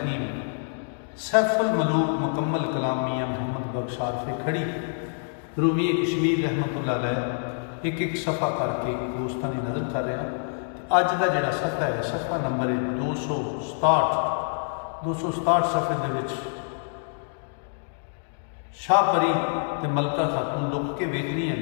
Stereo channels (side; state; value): right; silent; digital silence